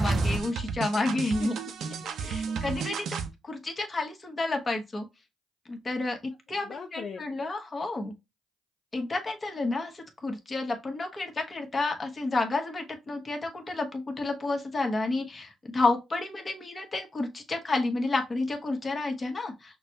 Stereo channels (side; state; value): both; normal; correlation 0.88